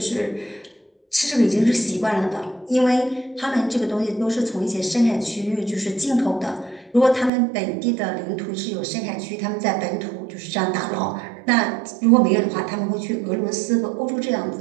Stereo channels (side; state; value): left; drops out; at 7.3 s